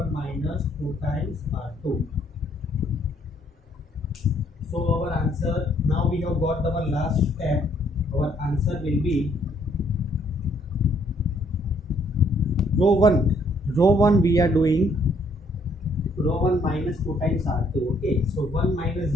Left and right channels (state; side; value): normal; both; correlation 0.67